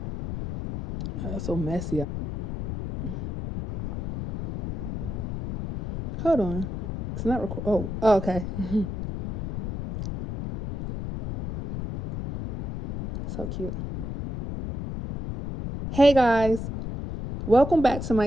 So messy. Hold on. It's not record. Oh, okay. So cute. Hey guys, welcome back to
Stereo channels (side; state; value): left; noise; rumble, 6 dB below the sound